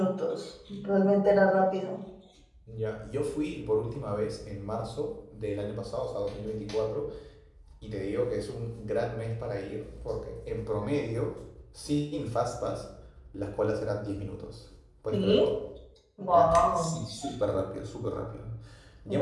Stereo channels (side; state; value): both; identical; correlation 1.00